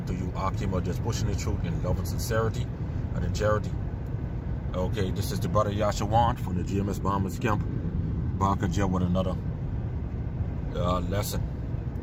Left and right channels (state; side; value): identical; both; correlation 1.00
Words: to you, Qam, just pushing the truth in love and sincerity and in charity. Okay, this is the brother Yasharahla from the GMS Bahamas camp. Back again with another lesson.